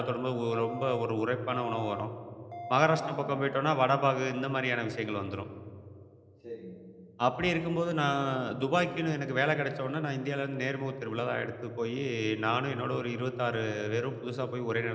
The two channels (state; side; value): identical; both; correlation 1.00